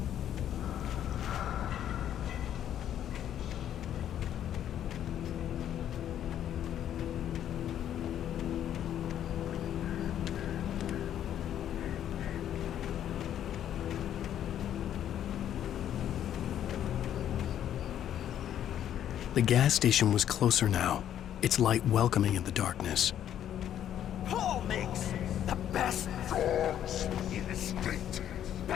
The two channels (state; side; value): quieter; right; 10.5 dB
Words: The gas station was closer now, its light welcoming in the darkness. Paul makes the best dogs in the state.